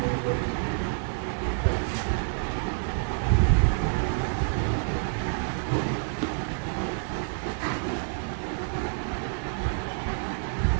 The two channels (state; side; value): silent; left; 59 dB below the other